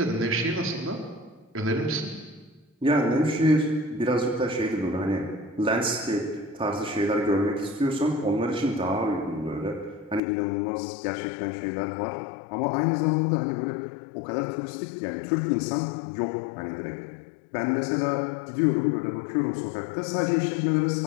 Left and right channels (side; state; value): right; drops out; at 10.2 s